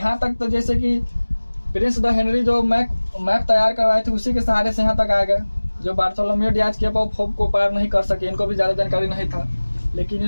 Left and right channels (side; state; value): both; inverted; correlation -1.00